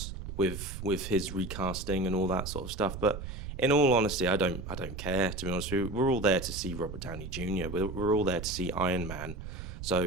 with his recasting and all that sort of stuff. But in all honesty, I don't care, to be honest with you. We're all there to see Robert Downey Jr. We're all there to see Iron Man. So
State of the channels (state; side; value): noise; right; rumble, 8 dB below the sound